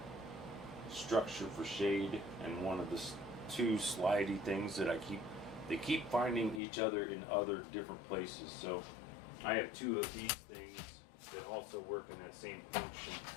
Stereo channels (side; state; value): right; drops out; at 6.6 s